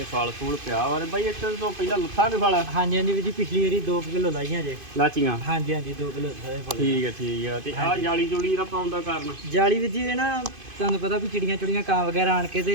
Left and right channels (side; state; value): left; late; 2.5 ms